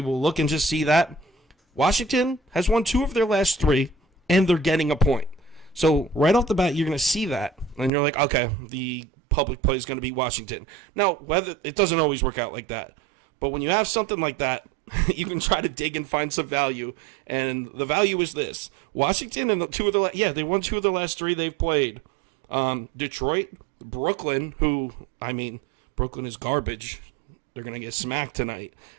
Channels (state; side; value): drops out; left; at 7.9 s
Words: look and just see that. Washington has won 2 of their last 3, and they're getting a point. So right off the bat, you're going to see that, and you're like, okay, the public play is going to be Washington. Now, whether it doesn't always work out like that, but when you have something like that, you can try to dig and find some value, and the value is this: Washington and they won 2 of the last 3 they've played. Detroit, Brooklyn, Brooklyn is garbage. They're gonna get smacked tonight.